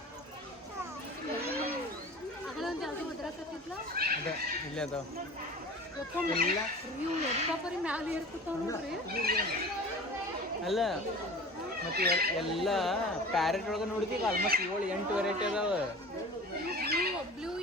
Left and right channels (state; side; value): normal; both; correlation 0.40